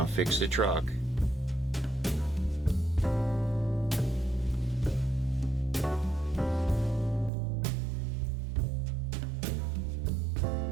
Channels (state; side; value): drops out; left; at 7.3 s